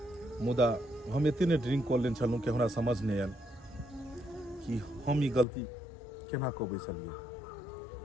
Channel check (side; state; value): right; drops out; at 5.5 s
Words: मुदा हम इतने ड्रिंक कर लेन छलूँ कि हमरा समझ नहीं आयल कि हम ई गलती केना कऽ बैसलिए।